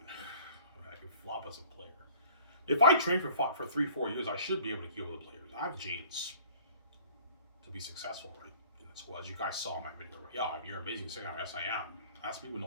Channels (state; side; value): inverted; both; correlation -0.50